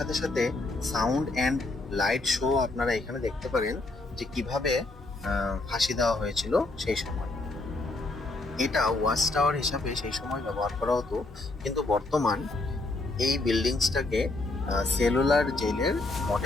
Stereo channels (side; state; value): right; quieter; 3.1 dB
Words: সাথে সাউন্ড অ্যান্ড লাইট শো আপনারা এখানে দেখতে পারেন যে কিভাবে ফাঁসি দেওয়া হয়েছিল সেই সময়। এটা ওয়াচ টাওয়ার হিসাবে সেই সময় ব্যবহার করা হতো, কিন্তু বর্তমান এই বিল্ডিংসটাকে সেলুলার জেলের